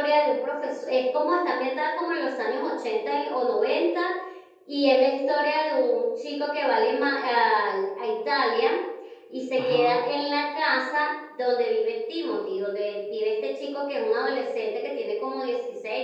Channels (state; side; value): identical; both; correlation 1.00